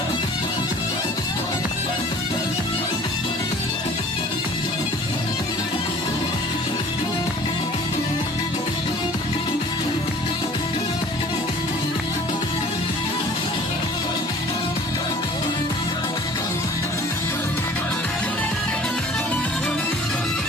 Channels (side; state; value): both; normal; correlation 0.49